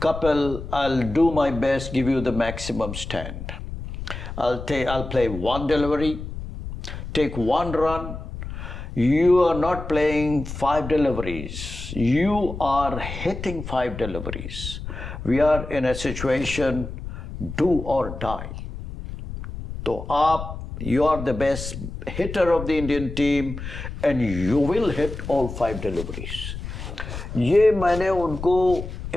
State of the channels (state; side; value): noise; left; rumble, 9 dB below the sound